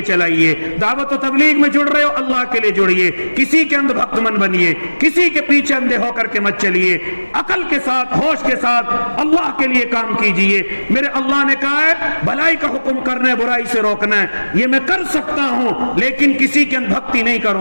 چلائیے، دعوت و تبلیغ میں جڑ رہے ہو اللہ کے لیے جڑیے، کسی کے اندھ بھکت من بنیے، کسی کے پیچھے اندھے ہو کر کے مت چلیے، عقل کے ساتھ ہوش کے ساتھ اللہ کے لیے کام کیجئے۔ میرے اللہ نے کہا ہے بھلائی کا حکم کرنا ہے، برائی سے روکنا ہے، یہ میں کر سکتا ہوں، لیکن کسی کے اندھ بھکتی نہیں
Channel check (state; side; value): inverted; both; correlation -1.00